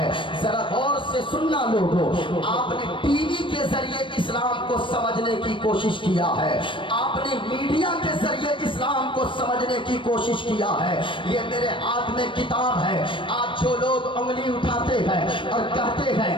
ذرا غور سے سننا لوگوں, آپ نے ٹی وی کے ذریعے اسلام کو سمجھنے کی کوشش کیا ہے, آپ نے میڈیا کے ذریعے اسلام کو سمجھنے کی کوشش کیا ہے. یہ میرے ہاتھ میں کتاب ہے. آج جو لوگ انگلی اٹھاتے ہیں اور کہتے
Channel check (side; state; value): right; late; 0.25 ms